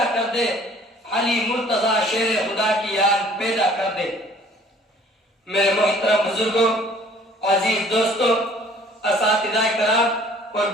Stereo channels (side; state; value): both; normal; correlation 0.54